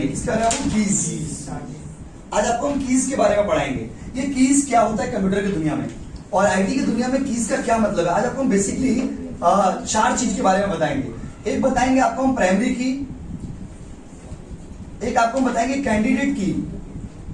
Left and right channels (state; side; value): identical; both; correlation 1.00